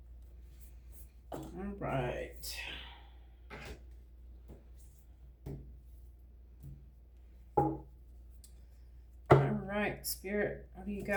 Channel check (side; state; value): both; identical; correlation 1.00